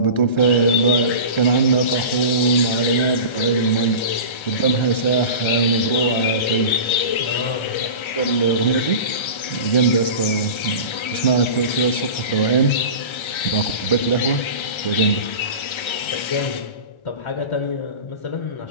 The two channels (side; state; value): right; late; 1.3 ms